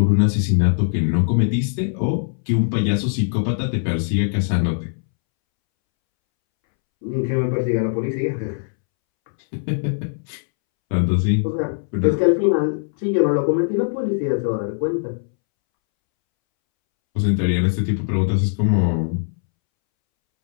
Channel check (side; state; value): right; silent; 65 dB below the other